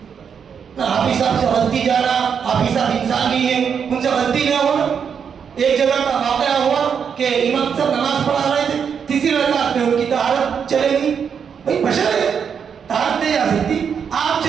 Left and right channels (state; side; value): quieter; left; 7.1 dB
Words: نہ حافظ صاحب سے غلطی جانا, حافظ صاحب انسان نہیں ہے, ان سے غلطی نہ ہونا. ایک جگہ کا واقعہ ہوا کہ امام صاحب نماز پڑھا رہے تھے, 3ری رکعت میں ان کی طہارت چلے گئی. بھائی بشر ہے, طہارت نہیں آ سکتی, آپ